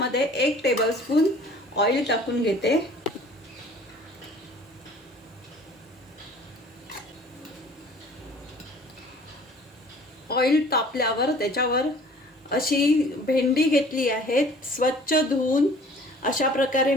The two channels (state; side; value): normal; both; correlation 0.50